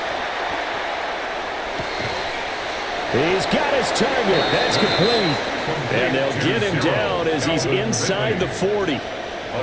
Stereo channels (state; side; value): identical; both; correlation 1.00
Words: He's got his target. That's complete. And they'll get him down as he's inside the 40.